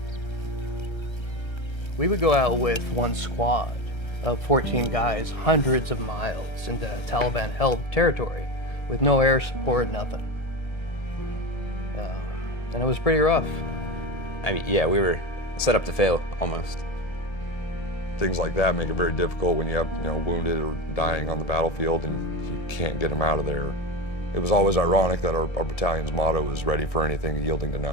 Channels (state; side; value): late; right; 1.3 ms